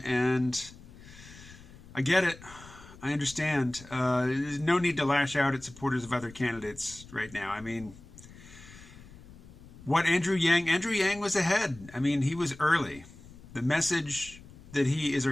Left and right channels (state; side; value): noise; left; rumble, 19 dB below the sound